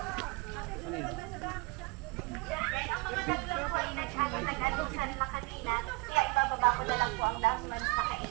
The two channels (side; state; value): left; quieter; 26.9 dB